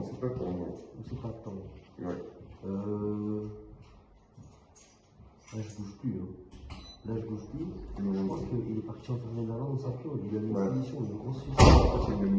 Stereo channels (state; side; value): identical; both; correlation 1.00